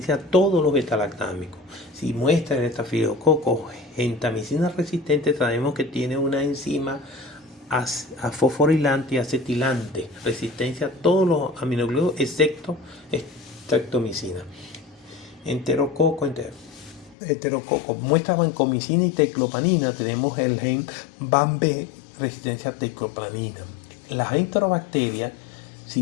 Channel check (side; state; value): right; drops out; at 17.2 s